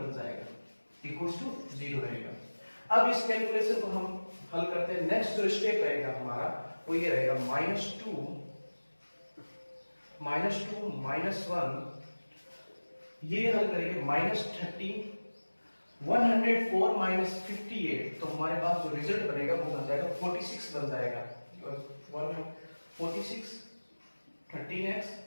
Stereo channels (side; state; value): both; inverted; correlation -1.00